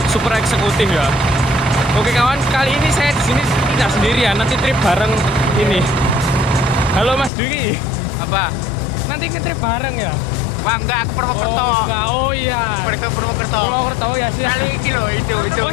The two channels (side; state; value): right; drops out; at 7.3 s